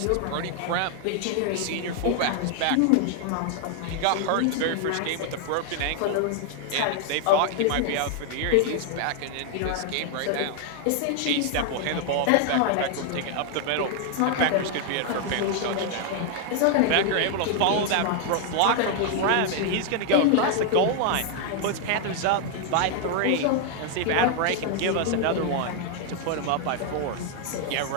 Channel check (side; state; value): both; different; correlation 0.00